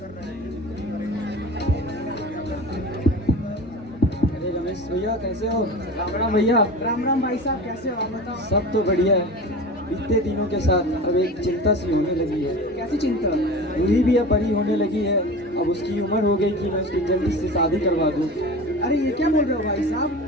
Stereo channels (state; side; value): normal; both; correlation 0.34